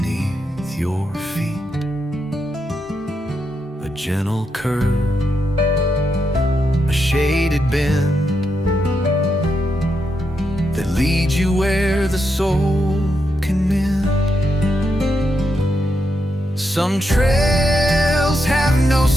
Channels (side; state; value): both; normal; correlation 0.83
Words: your feet. A gentle curve, a shaded bend that leads you where the soul can mend. Some trails have no